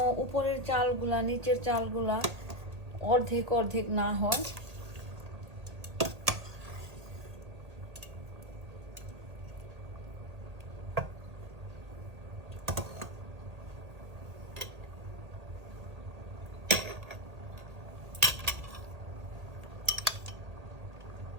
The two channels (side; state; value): left; late; 1.9 ms